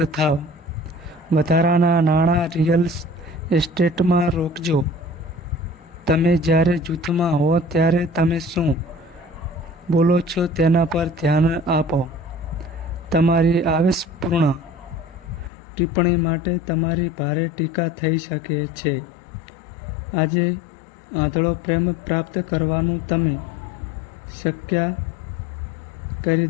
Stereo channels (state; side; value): drops out; right; at 15.5 s